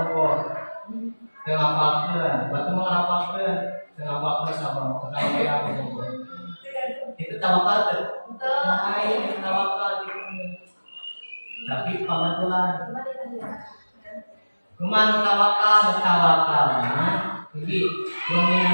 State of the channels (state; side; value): inverted; both; correlation -1.00